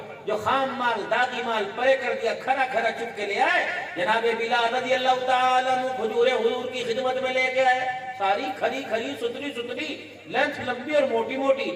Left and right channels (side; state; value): both; identical; correlation 1.00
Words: جو خام مال داغی مال پرے کر دیا, کھرا کھرا چپ کے لے آئے. جناب بلال رضی اللہ تعالیٰ عنہ کھجوریں حضور کی خدمت میں لے کے آئے, ساری کھری کھری ستری لینتھ لمبی اور موٹی موٹی.